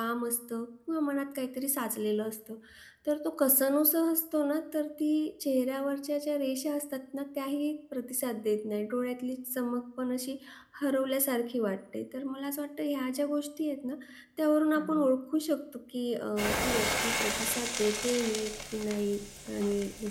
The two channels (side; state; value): both; identical; correlation 1.00